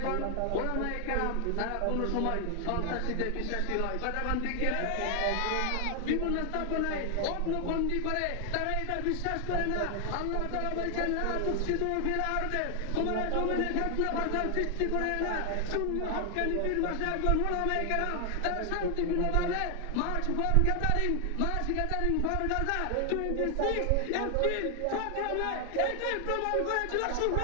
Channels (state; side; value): different; both; correlation 0.00